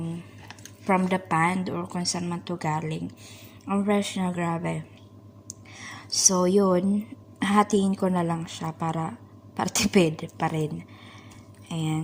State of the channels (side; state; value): both; identical; correlation 1.00